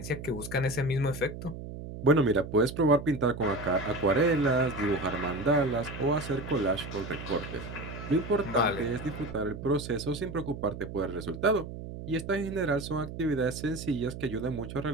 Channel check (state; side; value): noise; right; hum, 10 dB below the sound